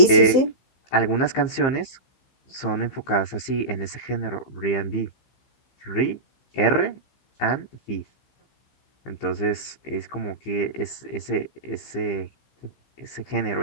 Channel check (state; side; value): late; right; 15 ms